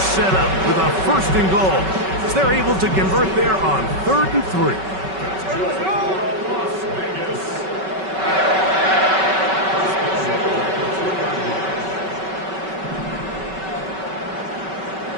up with a 1st and goal. They're able to convert there on 3rd and 3.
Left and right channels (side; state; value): left; late; 5.3 ms